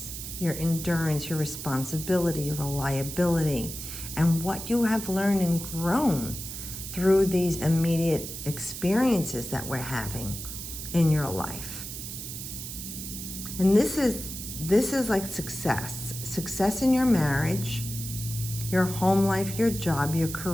your endurance, your responsibility, your reliability, and what you have learned and grown through these immediate experiences that we're having in your life. And this is like success in your marriage, your home life, your job, your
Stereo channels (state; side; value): noise; right; hiss, 8 dB below the sound